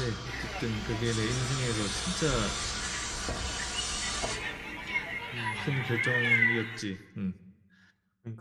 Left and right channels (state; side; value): identical; both; correlation 1.00